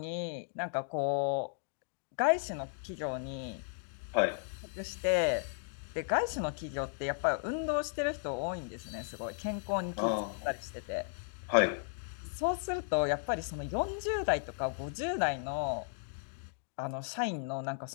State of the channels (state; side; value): silent; right; digital silence